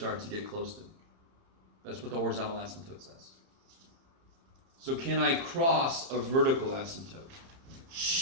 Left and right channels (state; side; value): late; left; 30 ms